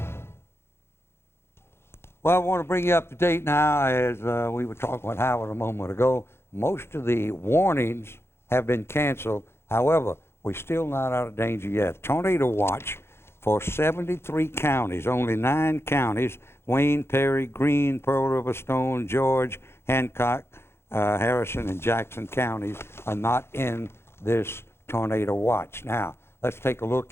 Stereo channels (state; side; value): late; right; 0.12 ms